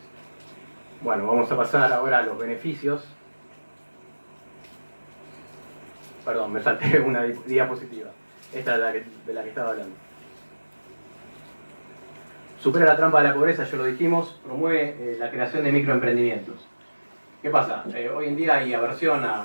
Bueno, vamos a pasar ahora a los beneficios. Perdón, me salté una diapositiva. Esta es de la que estaba hablando. Supera la trampa de la pobreza, ya lo dijimos, promueve la creación de microemprendimientos. ¿Qué pasa? Hoy en día hay aversión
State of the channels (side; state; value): both; inverted; correlation -1.00